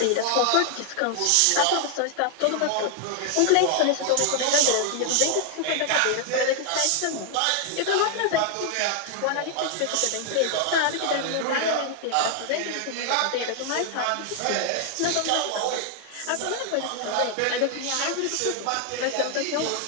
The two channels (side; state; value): both; different; correlation 0.00